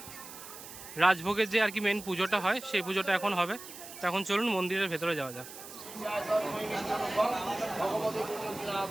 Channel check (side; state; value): right; noise; hiss, 14 dB below the sound